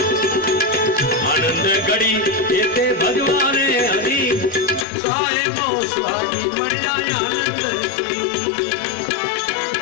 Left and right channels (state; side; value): drops out; right; at 4.9 s